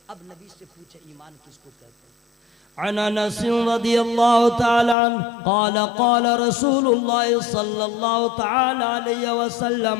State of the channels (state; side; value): drops out; right; at 5.0 s